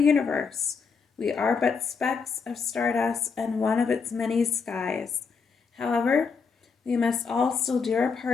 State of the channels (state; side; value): quieter; right; 5.4 dB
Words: We are but specks of stardust and one of its many skies. However, we must all still do our